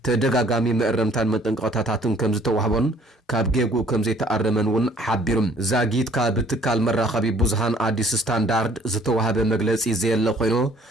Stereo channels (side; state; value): both; normal; correlation 0.57